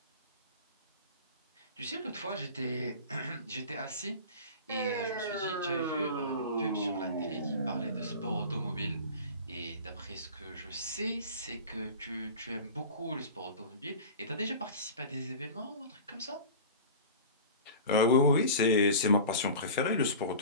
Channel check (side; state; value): both; inverted; correlation -0.36